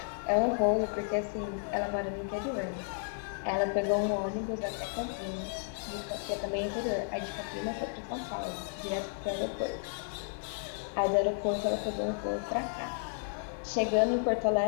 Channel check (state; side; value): silent; right; digital silence